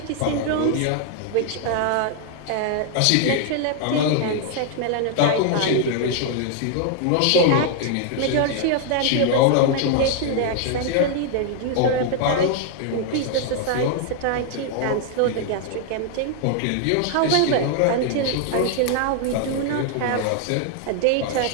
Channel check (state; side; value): different; both; correlation 0.00